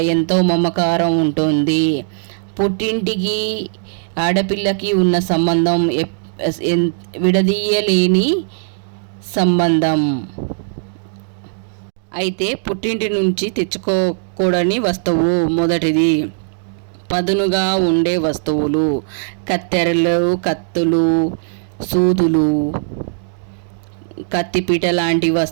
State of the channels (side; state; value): left; silent; digital silence